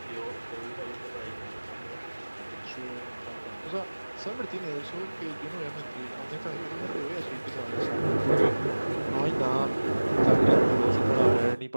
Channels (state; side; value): inverted; both; correlation -1.00